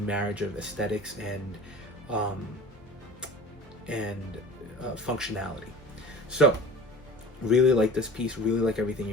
marriage of aesthetics and functionality. So really like this piece, really like everything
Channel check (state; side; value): noise; left; hum, 28 dB below the sound